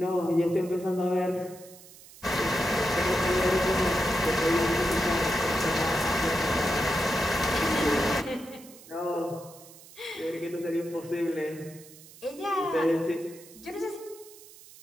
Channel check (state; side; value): noise; right; hiss, 20 dB below the sound